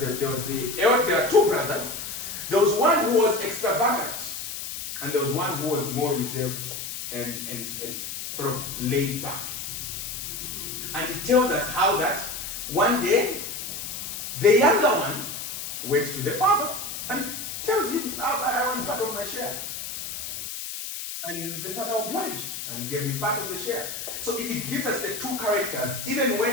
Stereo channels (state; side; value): noise; left; hiss, 6 dB below the sound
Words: there are two brothers. There was one who was extravagant, and there was one who was more reserved and sort of laid back. And it tells us how that one day the younger one went to the father and tells him, I want part of my share. And the father obliged and gave him part of the share. So it gives us the two characters, even